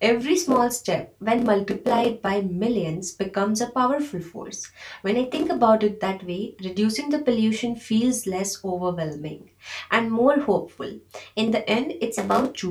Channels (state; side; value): identical; both; correlation 1.00